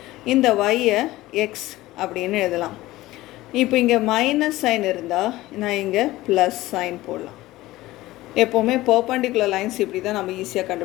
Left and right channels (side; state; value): right; quieter; 17.5 dB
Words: இந்த y-ஐ x அப்படின்னு எழுதலாம். இப்போ இங்கே மைனஸ் சைன் இருந்தால் நான் இங்கே ப்ளஸ் சைன் போடலாம். எப்போவுமே பர்பண்டிகுலர் லைன்ஸ் இப்படி தான் நம்ம ஈஸியாக